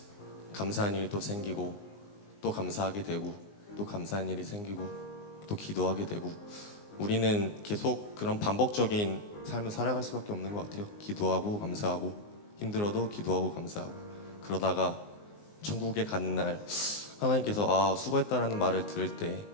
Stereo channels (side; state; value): right; late; 20 ms